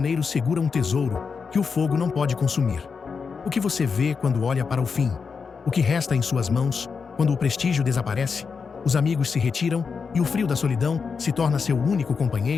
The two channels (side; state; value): right; quieter; 5.5 dB